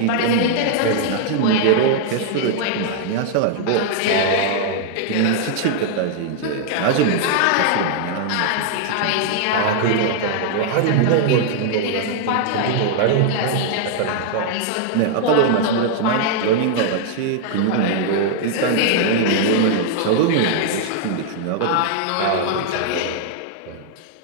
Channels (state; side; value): different; both; correlation -0.01